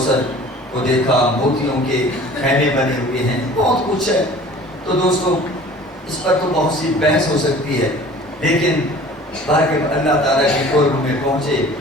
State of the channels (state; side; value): normal; both; correlation 0.46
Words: کو دیکھا. موتیوں کے خیمے بنے ہوئے ہیں، بہت کچھ ہے. تو دوستو اس پر تو بہت سی بحث ہو سکتی ہے، لیکن اللہ تعالیٰ کے قرب میں پہنچے